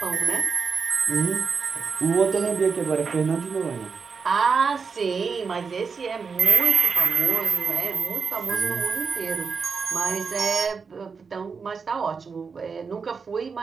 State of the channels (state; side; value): quieter; left; 5.3 dB